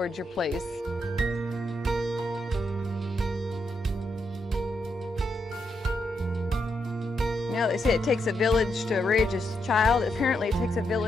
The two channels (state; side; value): normal; both; correlation 0.81